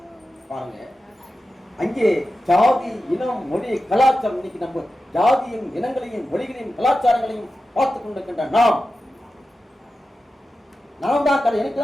பாருங்க, அங்கே ஜாதி, இனம், மொழி, கலாச்சாரம், இன்னைக்கு நம்ம ஜாதியும் இனங்களையும் மொழிகளையும் கலாச்சாரங்களையும் பார்த்துக் கொண்டிருக்கின்ற நாம் தான் எனக்கு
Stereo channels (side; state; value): both; normal; correlation 0.93